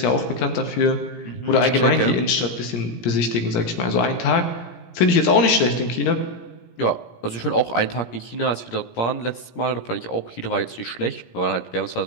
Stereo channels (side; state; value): right; late; 17 ms